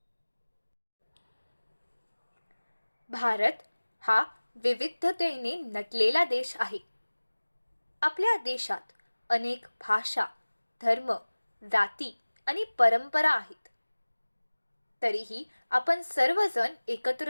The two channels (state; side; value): inverted; both; correlation -1.00